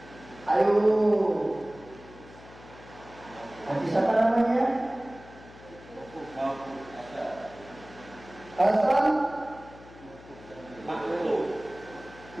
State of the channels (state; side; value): noise; left; hum, 20 dB below the sound